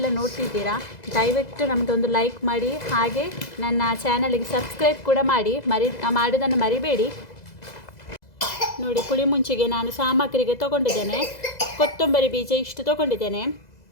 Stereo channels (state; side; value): late; right; 2.0 ms